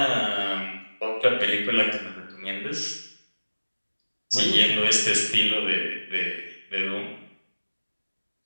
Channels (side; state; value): both; inverted; correlation -1.00